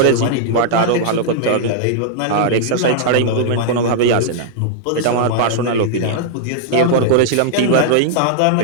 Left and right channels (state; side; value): different; both; correlation -0.01